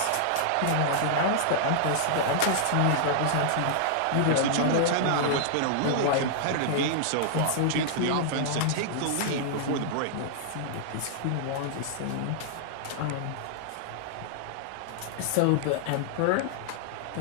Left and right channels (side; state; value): both; different; correlation -0.01